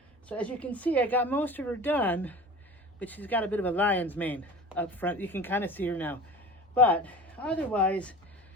So as you can see, I got most of her done, but she's got a bit of a lion's mane up front. You can kind of see her now. But otherwise,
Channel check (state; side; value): normal; both; correlation 0.38